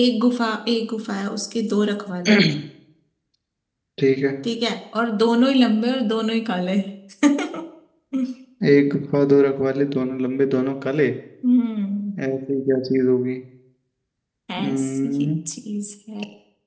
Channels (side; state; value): both; identical; correlation 1.00